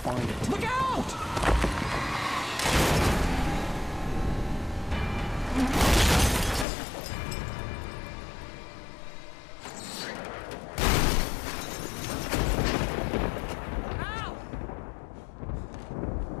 it. Look out!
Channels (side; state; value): right; drops out; at 6.7 s